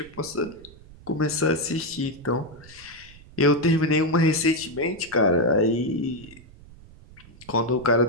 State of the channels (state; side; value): noise; right; rumble, 21 dB below the sound